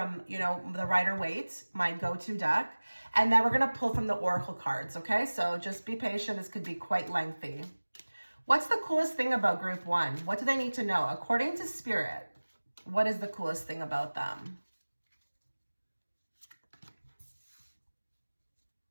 the Rider-Waite, my go-to deck. And then we're going to pull from the Oracle cards, okay? So just be patient. This could be quite lengthy. What's the coolest thing about group 1? What do they need to know? According to Spirit, what is the coolest thing about them?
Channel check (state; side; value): inverted; both; correlation -1.00